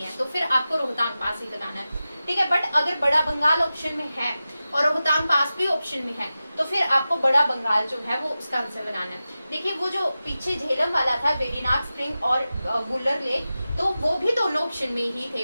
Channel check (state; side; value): inverted; both; correlation -0.94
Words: है, तो फिर आपको रोहतांग पास ही लगाना है, ठीक है। बट अगर बड़ा बंगाल ऑप्शन में है और रोहतांग पास भी ऑप्शन में है, तो फिर आपको बड़ा बंगाल जो है वो उसका आंसर बनाना है। देखिए वो जो पीछे झेलम वाला था, वेरीनाग स्प्रिंग और वुलर लेक, तो वो भी दोनों ऑप्शन में ही